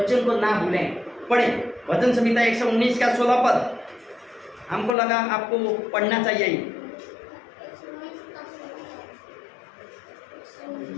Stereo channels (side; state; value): right; drops out; at 5.0 s